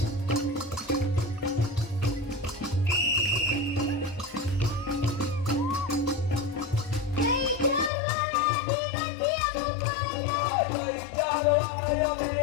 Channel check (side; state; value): right; drops out; at 7.9 s